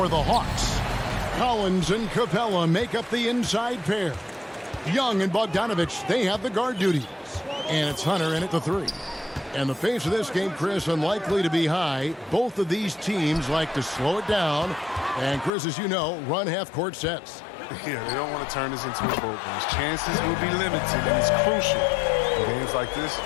the Hawks, Collins and Capella make up the inside pair. Young and Bogdanovich, they have the guard duties. And it's Hunter in at the three. And the pace of this game, Chris, unlikely to be high. Both of these teams like to slow it down. And Chris, as you know, run half-court sets. Yeah, they don't want to turn this into a boat race. Chances will be limited, and it's crucial. In games like this,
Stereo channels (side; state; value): right; drops out; at 15.5 s